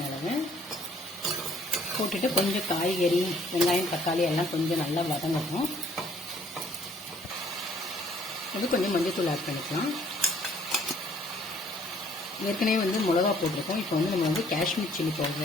அளவு. போட்டுட்டு கொஞ்சம் காய்கறி, வெங்காயம், தக்காளி எல்லாம் கொஞ்சம் நல்லா வதங்கணும். அது கொஞ்சம் மஞ்சத்தூள் ஆட் பண்ணிக்கலாம். ஏற்கனவே வந்து மிளகா போட்டிருக்கோம். இப்போ வந்து நம்ம வந்து காஷ்மீர் சில்லி பவுடர்,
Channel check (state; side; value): normal; both; correlation 0.61